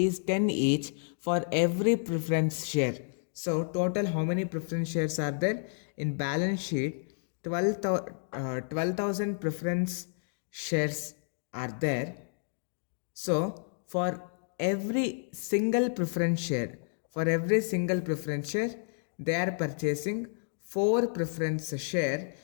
10 each for every preference share. So total how many preference shares are there? In balance sheet 12,000 preference shares are there. So for every single preference share, they are purchasing 4 preference share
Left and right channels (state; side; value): silent; right; digital silence